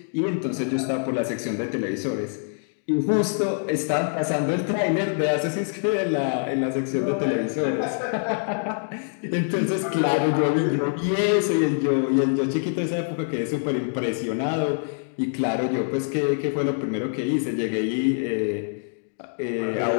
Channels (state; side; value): silent; right; digital silence